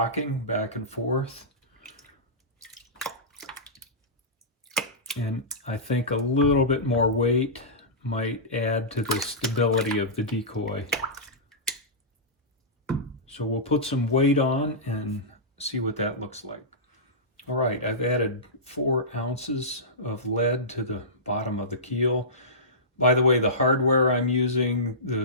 back and forth. And I think a little bit more weight might add to the stability of the decoy. So we'll put some weight on and see what that looks like. All right, I've added 4 ounces of lead to the bottom of the keel. By the way, the hardware I'm using,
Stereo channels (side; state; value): both; normal; correlation -0.18